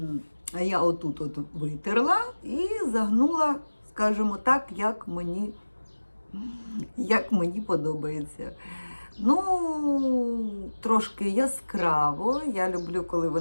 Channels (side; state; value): both; inverted; correlation -1.00